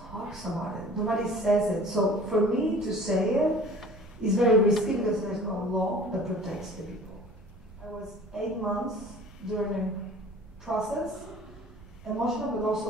about it. Nobody says it. So for me to say it is very risky because there's no law that protects the people. I was 8 months during a process, emotional but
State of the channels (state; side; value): normal; both; correlation 0.46